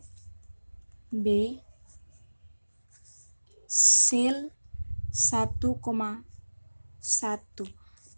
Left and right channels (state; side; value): inverted; both; correlation -1.00